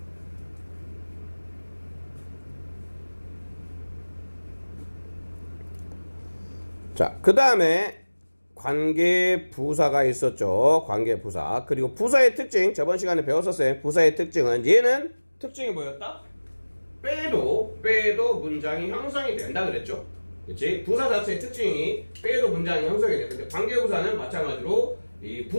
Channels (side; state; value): both; inverted; correlation -1.00